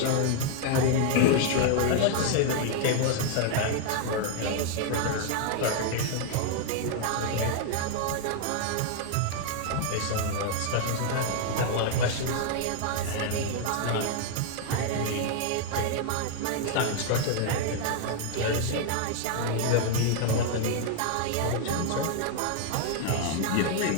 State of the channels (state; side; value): different; both; correlation 0.00